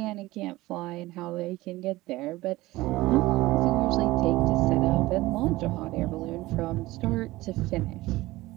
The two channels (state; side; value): quieter; left; 18.7 dB